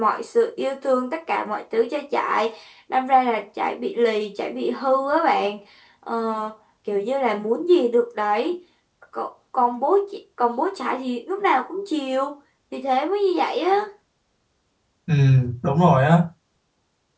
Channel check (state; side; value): identical; both; correlation 1.00